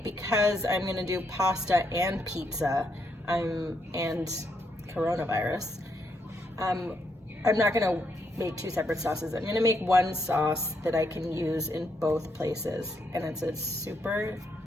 because I'm gonna do pasta and pizza, and coronavirus, I'm not gonna make two separate sauces. I'm gonna make one sauce that I can use in both places, and it's a super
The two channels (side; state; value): both; normal; correlation 0.77